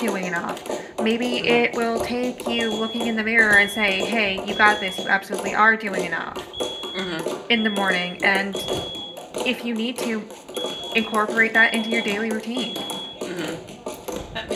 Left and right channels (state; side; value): identical; both; correlation 1.00